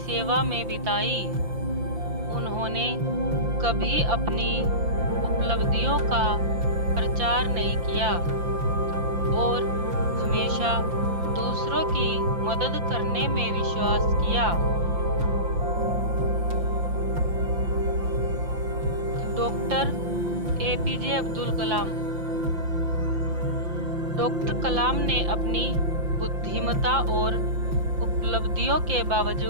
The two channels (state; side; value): late; left; 5.8 ms